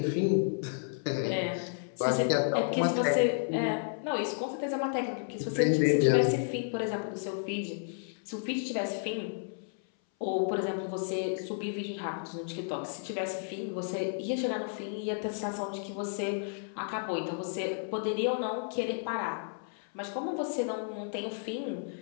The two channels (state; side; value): silent; right; 56 dB below the other